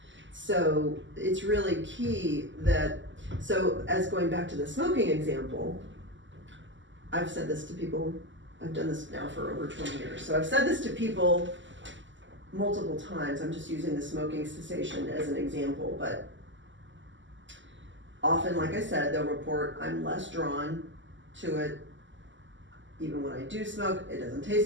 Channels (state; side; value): late; left; 0.54 ms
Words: So it's really key that, so as going back to the smoking example, I've said this to people, I've done this now for over 20 years, so I've said this to people multiple times. I'm just using the smoking cessation as an example, but often, like I said, they'll report I'm less drawn to it. Even when I do smoke, it doesn't